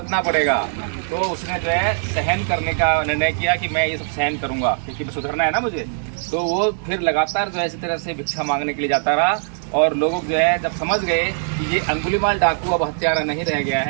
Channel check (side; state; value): left; silent; digital silence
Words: पड़ेगा। तो उसने जो है सहन करने का निर्णय किया कि मैं ये सब सहन करूंगा क्योंकि सुधरना है ना मुझे। तो वो फिर लगातार जो है इसी तरह से भिक्षा मांगने के लिए जाता रहा और लोग जो है जब समझ गए कि ये अंगुलीमाल डाकू अब हत्यारा नहीं रह गया